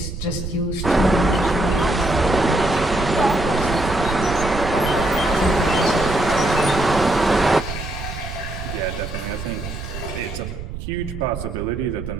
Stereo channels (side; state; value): right; noise; rumble, 8 dB below the sound